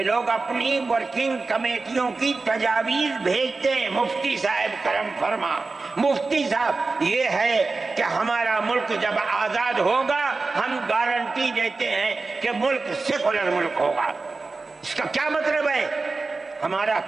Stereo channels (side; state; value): left; quieter; 3.8 dB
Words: لوگ اپنی ورکنگ کمیٹیوں کی تجاویز بھیجتے ہیں، مفتی صاحب کرم فرما، مفتی صاحب یہ ہے کہ ہمارا ملک جب آزاد ہوگا ہم گارنٹی دیتے ہیں کہ ملک سیکولر ملک ہوگا۔ اس کا کیا مطلب ہے؟ ہمارا